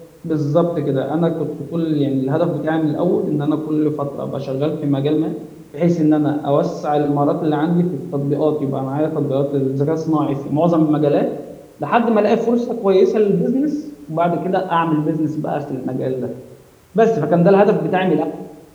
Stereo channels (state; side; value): identical; both; correlation 1.00